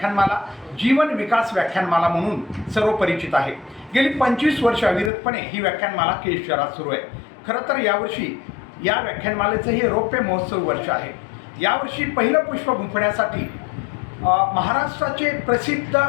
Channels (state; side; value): drops out; right; at 5.1 s